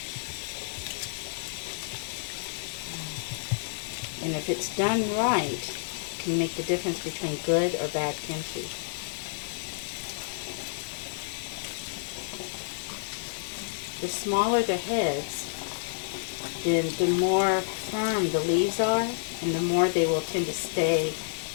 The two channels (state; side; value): silent; right; digital silence